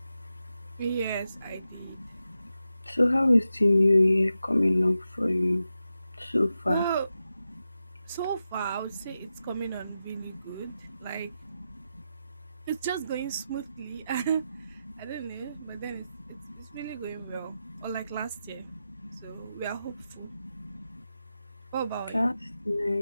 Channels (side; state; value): both; inverted; correlation -0.90